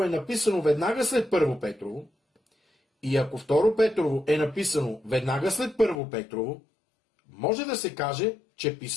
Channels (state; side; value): drops out; right; at 6.0 s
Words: е написано веднага след 1 Петрово, и ако 2 Петрово е написано веднага след 1 Петрово, може да се каже, че